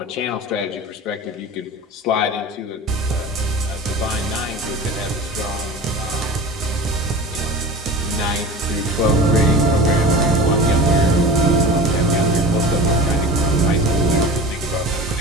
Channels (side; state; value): both; normal; correlation 0.34